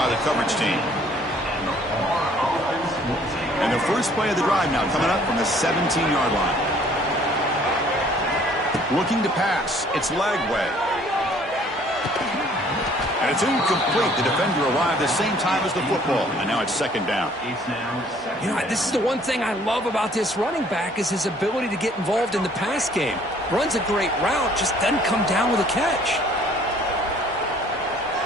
the coverage team. And the first play of the drive now coming up from the 17-yard line. Looking to pass. It's Lagway. And it's incomplete. The defender arrived the same time as the football. And now it's second down. You know, this is the one thing I love about this running back is his ability to get involved in the pass game. Runs a great route, just doesn't come down with a catch.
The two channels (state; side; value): normal; both; correlation 0.58